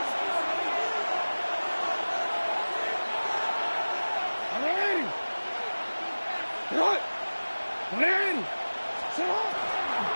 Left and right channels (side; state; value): both; inverted; correlation -1.00